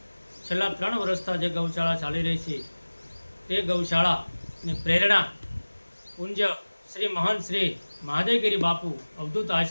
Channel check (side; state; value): both; inverted; correlation -1.00